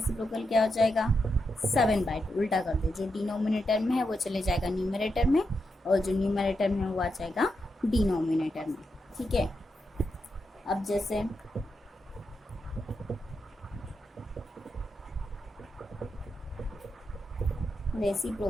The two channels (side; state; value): both; normal; correlation 0.85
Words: क्या हो जाएगा? 7/2. उल्टा कर दो. जो डिनोमिनेटर में है वो चले जाएगा न्यूमरेटर में और जो न्यूमरेटर में वो आ जाएगा डिनोमिनेटर में. ठीक है. अब जैसे